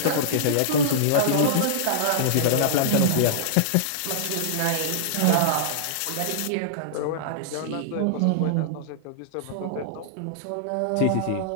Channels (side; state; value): both; different; correlation -0.02